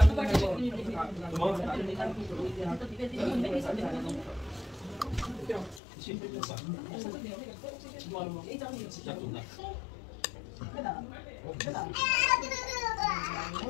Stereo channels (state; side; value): drops out; right; at 5.8 s